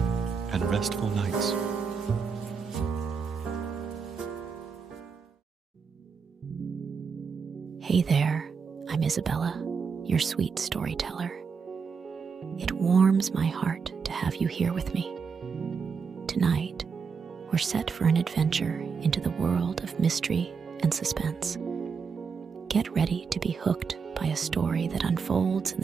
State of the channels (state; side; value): quieter; left; 5.7 dB